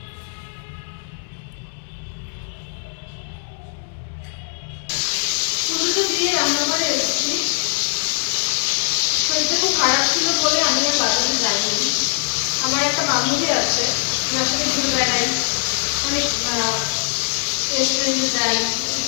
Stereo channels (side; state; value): right; silent; digital silence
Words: পুজোটা দিয়ে রান্নাঘরে এসেছি। শরীরটা খুব খারাপ ছিল বলে আমি আর বাজারে যাইনি। আমার একটা বান্ধবী আছে, যার সাথে ঘুরে বেড়াই, অনেক রেস্টুরেন্টে যাই,